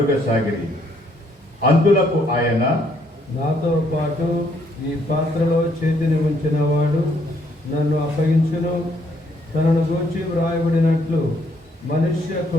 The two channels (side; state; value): both; normal; correlation 0.69